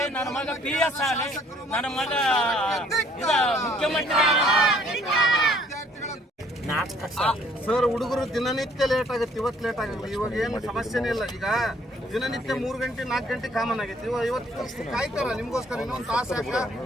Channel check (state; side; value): normal; both; correlation 0.61